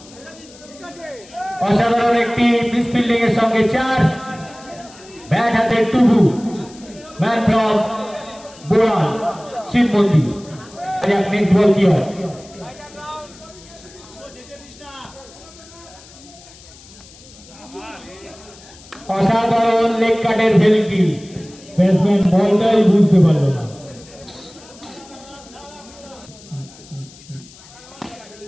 অসাধারণ একটি মিসফিল্ডিং এর সঙ্গে 4 ব্যাট হাতে টুবু ম্যান ফ্রম বোলার শিবমন্দি। নেক্সট বল কি হয়? অসাধারণ লেগ কাটের ভেলকি, ব্যাটসম্যান বলটাই বুঝতে পারল না।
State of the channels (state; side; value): noise; left; hiss, 22 dB below the sound